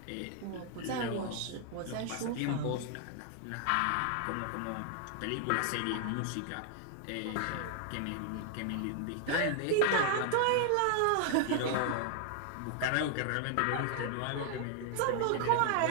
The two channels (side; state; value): both; different; correlation 0.00